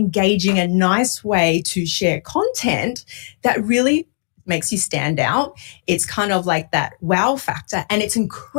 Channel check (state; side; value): silent; right; digital silence